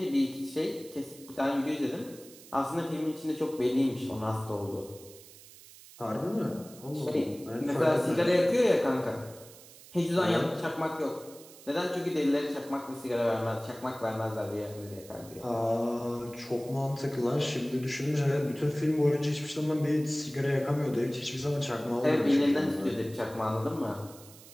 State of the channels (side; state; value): right; noise; hiss, 20 dB below the sound